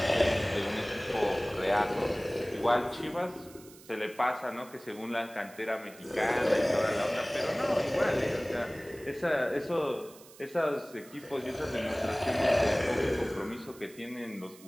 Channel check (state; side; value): noise; right; hiss, 22 dB below the sound